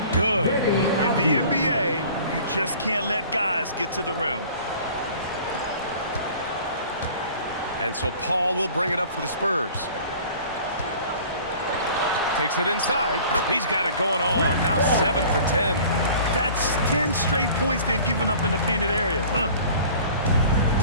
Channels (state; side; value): inverted; both; correlation -0.46